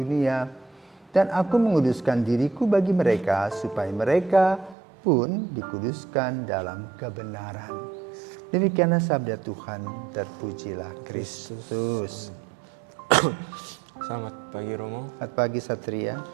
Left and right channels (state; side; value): drops out; left; at 4.8 s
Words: Dan aku menguduskan diriku bagi mereka, supaya mereka pun dikuduskan dalam kebenaran. Demikianlah sabda Tuhan, terpujilah Kristus. Selamat pagi Romo. Selamat pagi Satria.